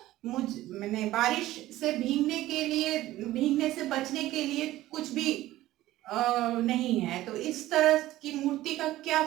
मैंने बारिश से भीगने से बचने के लिए कुछ भी नहीं है, तो इस तरह की मूर्ति का क्या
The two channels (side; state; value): left; quieter; 15.7 dB